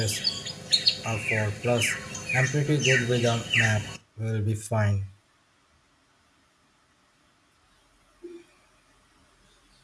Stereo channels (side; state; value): both; identical; correlation 1.00